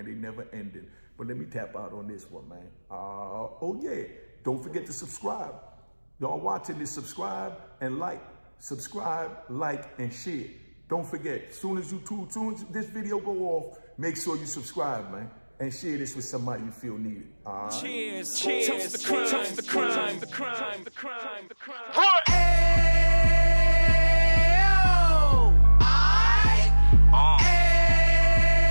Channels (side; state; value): both; inverted; correlation -1.00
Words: They never ended. But let me tap out on this one, man. Oh, yeah. Don't forget to subscribe. Y'all watching this, subscribe and like. Subscribe, like, and share. Don't forget, soon as this video go off, make sure you subscribe, man. And share this with somebody you feel needed. Cheers, cheers, toast the crime, toast the crime, the crime, the crime, the crime.